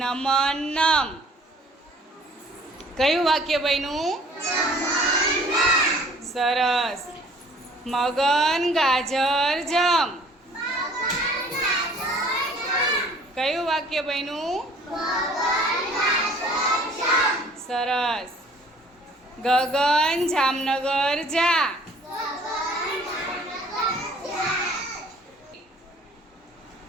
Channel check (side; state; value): both; normal; correlation 0.54